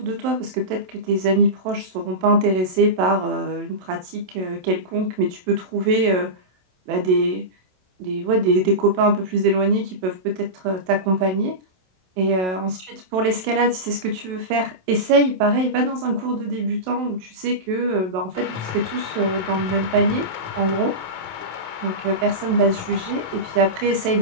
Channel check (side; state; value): left; late; 27 ms